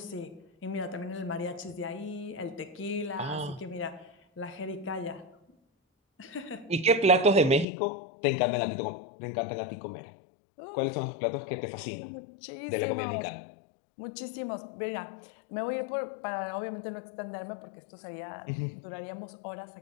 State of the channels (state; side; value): drops out; right; at 7.7 s